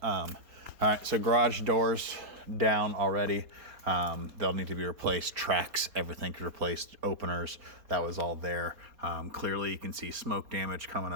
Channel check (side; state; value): left; late; 4.2 ms